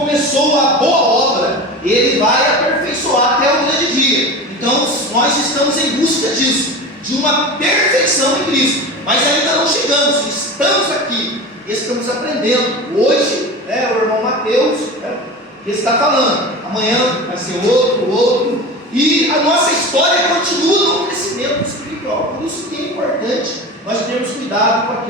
a boa obra, ele vai aperfeiçoar até o grande dia. Então nós estamos em busca disso, de uma perfeição em Cristo, mas ainda não chegamos, estamos aqui, estamos aprendendo. Hoje, o irmão Mateus está falando, amanhã vai ser outro, e a nossa história continua no crescimento espiritual. Por isso que é importante nós termos cuidado com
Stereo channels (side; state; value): both; normal; correlation 0.30